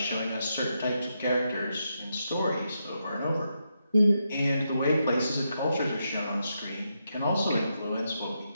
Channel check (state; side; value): inverted; both; correlation -0.83